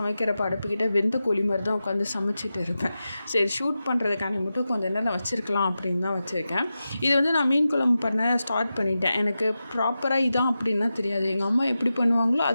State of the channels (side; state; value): both; inverted; correlation -0.92